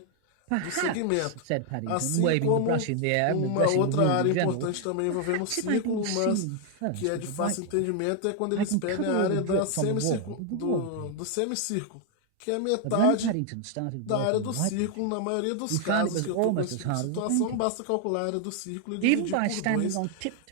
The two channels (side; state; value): both; different; correlation 0.00